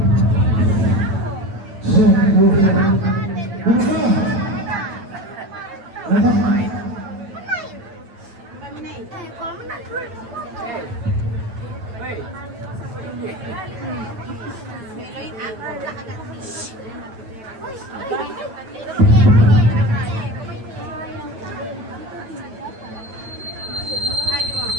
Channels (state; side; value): late; left; 9.0 ms